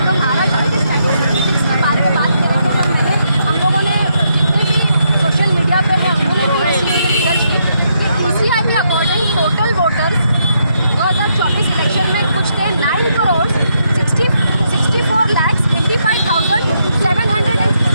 तो महाराष्ट्र के स्टैटिस्टिक्स के बारे में बात करेंगे। तो मैंने हम लोगों ने जितने भी सोशल मीडिया पे है उन्होंने भी इसी पे रिसर्च की कि PCI के अकॉर्डिंग टोटल वोटर्स 2024 इलेक्शन में कुछ थे 9,64,85,700।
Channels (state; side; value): inverted; both; correlation -0.77